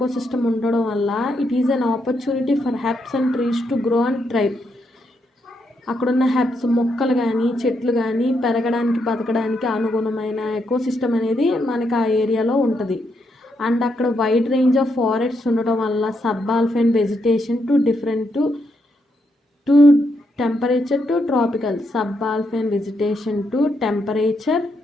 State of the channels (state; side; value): normal; both; correlation 0.79